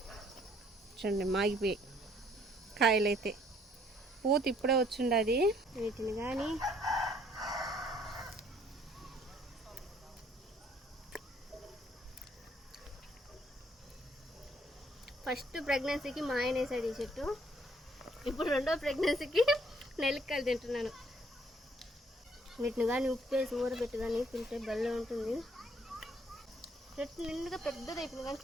చూడండి మాగిపోయి కాయలైతే. పూత ఇప్పుడే వచ్చిండది. వీటిని కానీ ఫస్ట్ ప్రెగ్నెన్సీకి మా ఆయన వేసాడు ఈ చెట్టు. ఇప్పుడు రెండో ప్రెగ్నెన్సీకి నెల్లికాయలు తింటున్నాను. వీటిని కానీ ఉప్పు వేసి ఊరబెట్టి కానీ తింటే బెల్లం ఉంటుంది. చెట్టు నిండుగా పెద్దది అయిపోయింది, కానీ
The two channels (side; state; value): both; normal; correlation 0.64